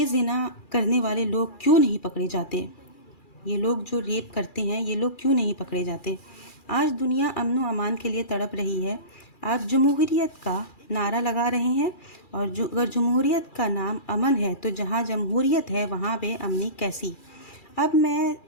زنا کرنے والے لوگ کیوں نہیں پکڑے جاتے؟ یہ لوگ جو ریپ کرتے ہیں یہ لوگ کیوں نہیں پکڑے جاتے؟ آج دنیا امن و امان کے لیے تڑپ رہی ہے۔ آپ جمہوریت کا نعرہ لگا رہے ہیں، اور اگر جمہوریت کا نام امن ہے تو جہاں جمہوریت ہے وہاں بے امنی کیسی؟ اب میں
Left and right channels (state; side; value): late; right; 2.4 ms